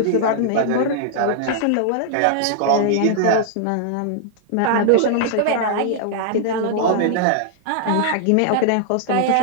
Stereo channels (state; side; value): different; both; correlation -0.01